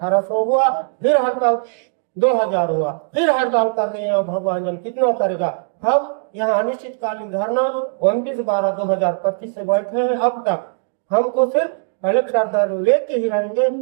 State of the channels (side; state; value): left; silent; digital silence